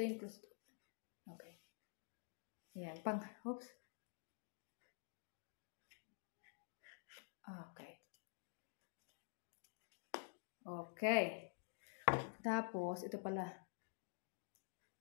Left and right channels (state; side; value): silent; right; digital silence